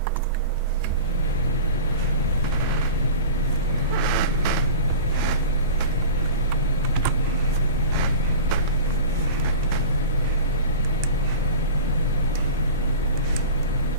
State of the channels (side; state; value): both; inverted; correlation -0.34